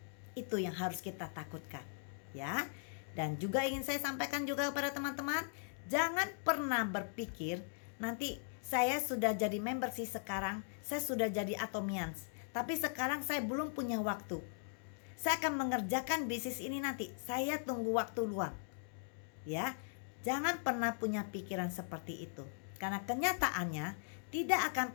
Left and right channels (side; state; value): right; silent; digital silence